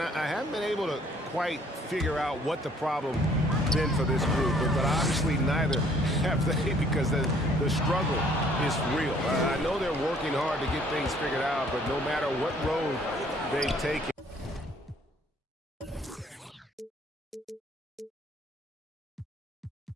haven't been able to quite figure out what the problem been for this group, but obviously neither have they, because the struggle is real. I know they're working hard to get things figured out, but no matter what road they've taken.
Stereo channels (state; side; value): normal; both; correlation 0.60